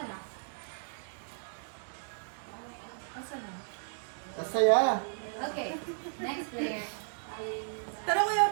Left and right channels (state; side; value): silent; left; digital silence